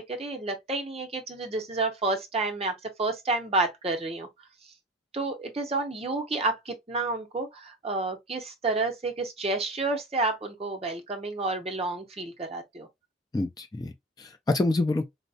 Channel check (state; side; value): normal; both; correlation 0.30